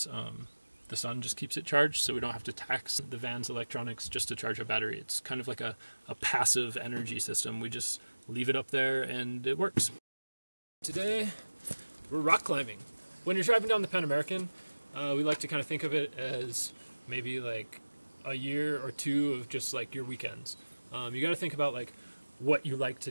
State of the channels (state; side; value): inverted; both; correlation -1.00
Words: the sun just keeps it charged, so we don't have to tax the van's electronics just to charge a battery. It's kind of like a passive energy system. We just leave it up there and it works. Today, we're rock climbing. When you're driving down the Pan American, we like to kind of think of it as maybe like a year or 2 of just like your weekends. You got to think about like what you like